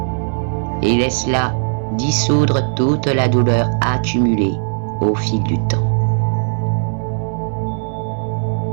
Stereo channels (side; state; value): left; silent; digital silence